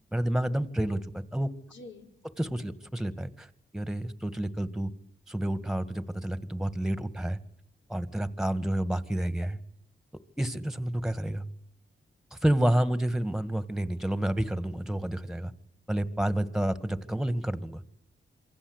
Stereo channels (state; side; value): normal; both; correlation 0.98